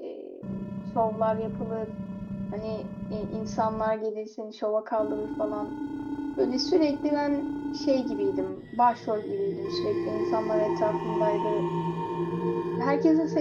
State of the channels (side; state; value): both; identical; correlation 1.00